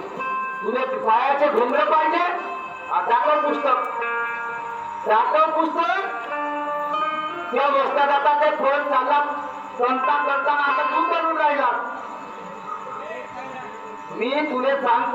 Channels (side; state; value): both; identical; correlation 1.00